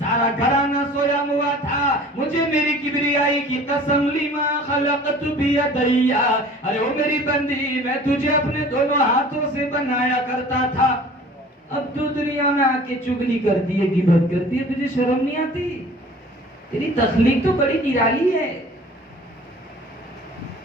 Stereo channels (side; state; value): both; normal; correlation 0.46